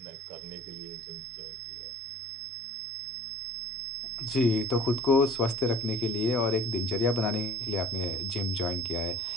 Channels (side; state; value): both; normal; correlation 0.47